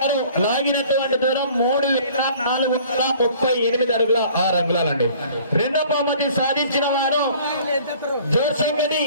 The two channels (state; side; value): inverted; both; correlation -0.51